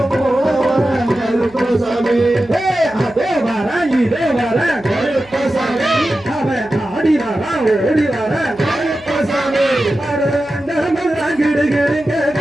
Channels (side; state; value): right; noise; hum, 25 dB below the sound